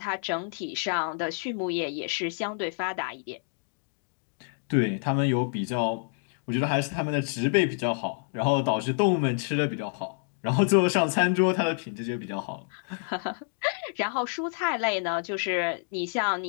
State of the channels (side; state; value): right; silent; 59 dB below the other